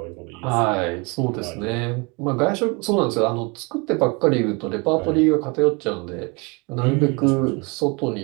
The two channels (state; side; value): quieter; left; 29.3 dB